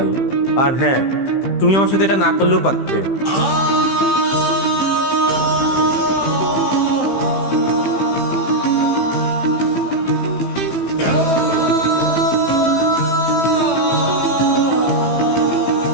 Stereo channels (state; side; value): late; right; 15 ms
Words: আর হ্যাঁ, তুমি আমার সাথে এটা না করলেও পারতে।